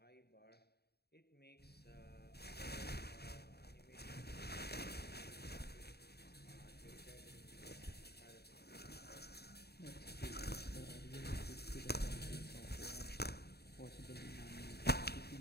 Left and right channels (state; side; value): late; right; 0.47 ms